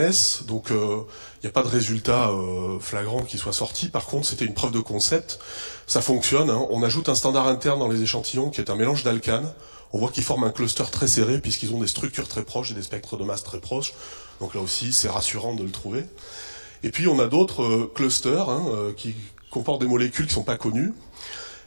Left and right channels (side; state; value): both; inverted; correlation -1.00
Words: donc il n'y a pas de résultat flagrant qui soit sorti. Par contre, c'était une preuve de concept. Ça fonctionne, hein. On ajoute un standard interne dans les échantillons qui est un mélange d'alcanes. On voit qu'ils forment un cluster très serré puisqu'ils ont des structures très proches et des spectres de masse très proches. Donc là aussi, c'est rassurant de le trouver. Et puis, on a d'autres clusters qui comportent des molécules qui ne sont pas connues.